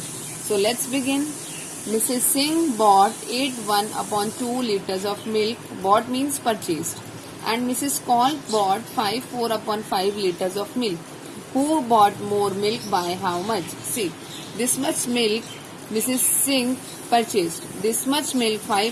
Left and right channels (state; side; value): identical; both; correlation 1.00